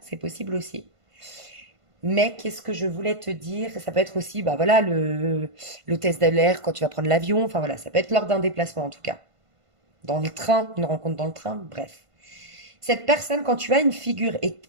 c'est possible aussi. Mais qu'est-ce que je voulais te dire? Ça peut être aussi, bah voilà, l'hôtesse de l'air quand tu vas prendre l'avion. Enfin voilà, ça peut être lors d'un déplacement en tout cas. Dans le train, une rencontre dans le train, bref. Cette personne, quand tu as une figure, et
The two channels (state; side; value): late; left; 1.5 ms